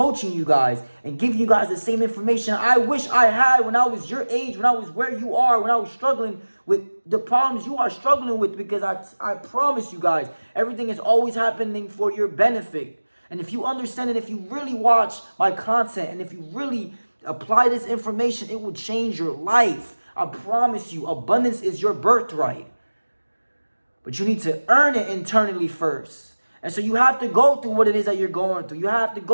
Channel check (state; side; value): inverted; both; correlation -1.00